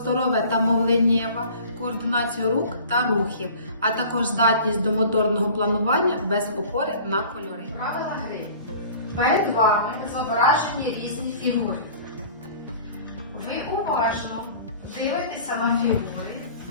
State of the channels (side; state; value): both; inverted; correlation -0.45